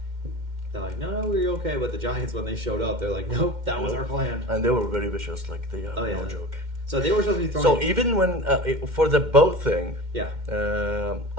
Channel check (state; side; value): late; left; 2.1 ms